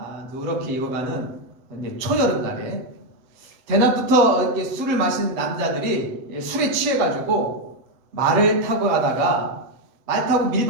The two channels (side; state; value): left; late; 7.9 ms